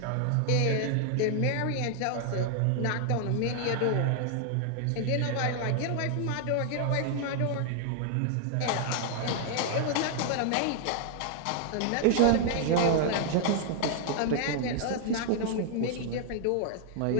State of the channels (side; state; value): both; different; correlation 0.00